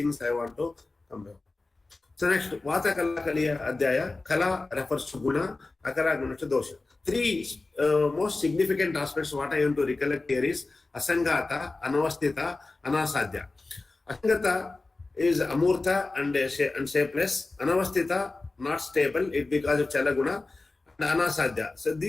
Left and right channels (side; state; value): right; quieter; 3.4 dB